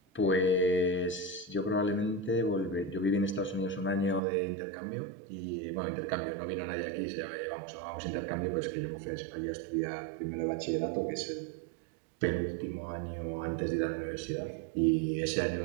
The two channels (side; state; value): left; drops out; at 4.2 s